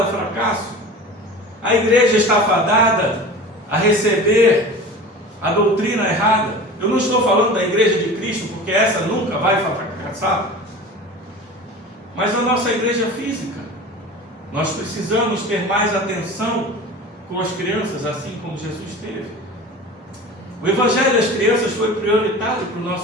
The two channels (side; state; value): both; normal; correlation 0.36